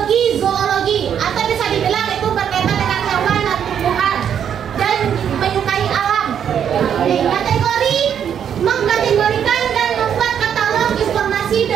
zoologi, atau bisa dibilang itu berkaitan dengan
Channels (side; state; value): left; quieter; 8.6 dB